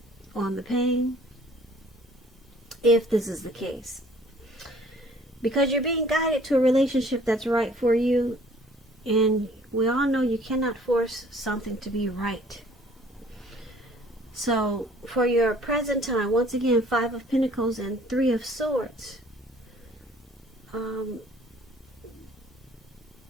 on the pain, if this is the case. Because you're being guided to a relationship that's right for you, and we all know you cannot force something to be right. So for your present time, once again, Five of Pentacles and Three of Swords.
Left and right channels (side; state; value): both; normal; correlation 0.55